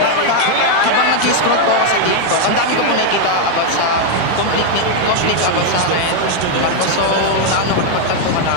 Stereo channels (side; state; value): both; different; correlation 0.01